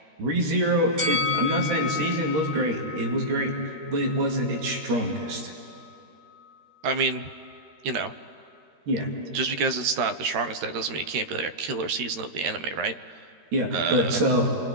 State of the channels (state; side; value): late; left; 13 ms